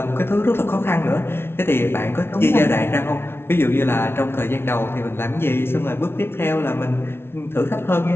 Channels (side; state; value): right; late; 0.12 ms